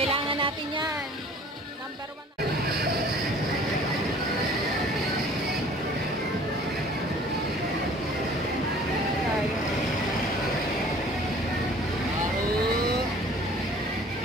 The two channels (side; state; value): both; normal; correlation 0.50